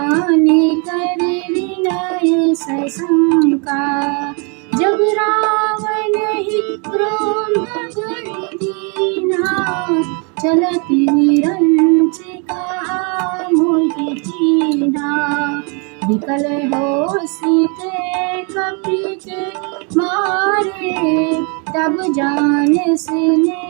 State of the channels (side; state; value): left; quieter; 34.9 dB